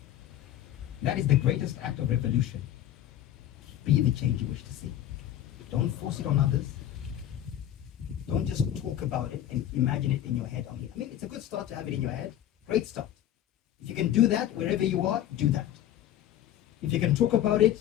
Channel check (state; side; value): quieter; right; 11.9 dB